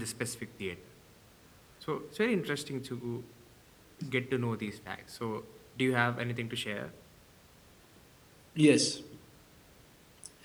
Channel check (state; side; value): identical; both; correlation 1.00